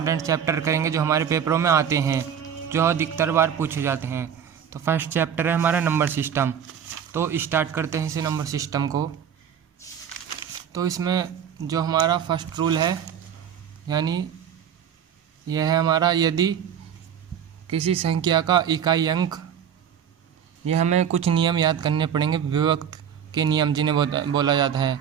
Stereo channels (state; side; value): quieter; left; 8.4 dB